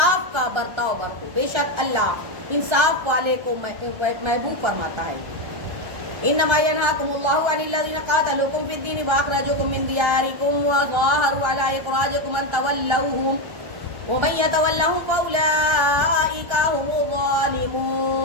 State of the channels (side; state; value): left; late; 1.3 ms